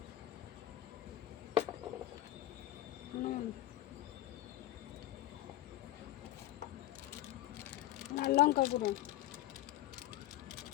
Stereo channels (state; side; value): quieter; right; 14.5 dB